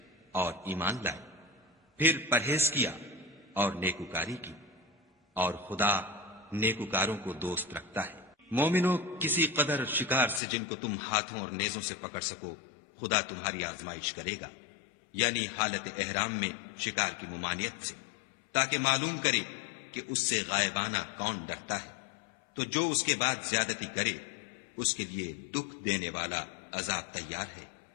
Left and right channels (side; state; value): right; drops out; at 10.4 s